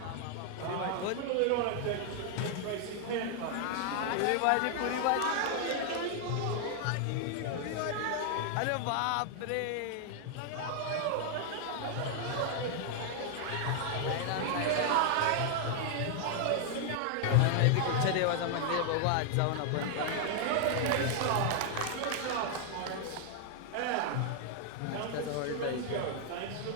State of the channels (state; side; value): different; both; correlation 0.00